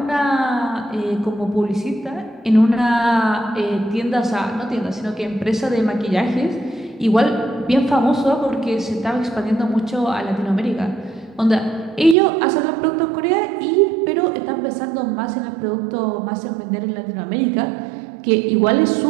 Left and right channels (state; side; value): drops out; left; at 12.2 s